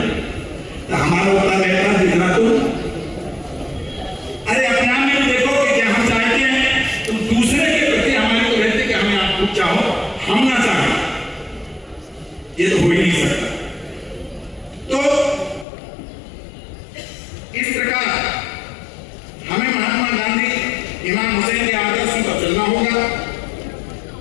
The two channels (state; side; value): drops out; right; at 15.7 s